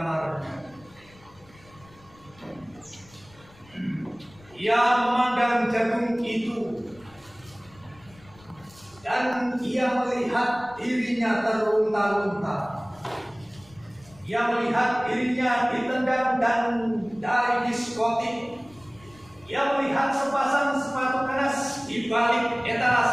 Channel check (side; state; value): left; noise; rumble, 26 dB below the sound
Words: Ia memandang jagung itu dan ia melihat dirinya terlunta-lunta. Ia melihat dirinya ditendang dan dari diskotik. Ia melihat sepasang sepatu keras di balik